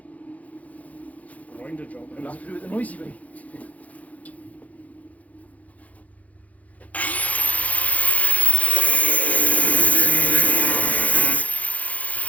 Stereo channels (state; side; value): late; right; 0.071 ms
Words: Grinder job. We'll have to do it the noisy way.